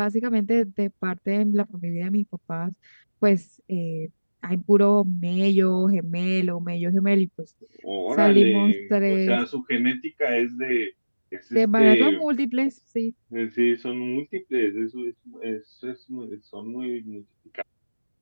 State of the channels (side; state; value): both; inverted; correlation -1.00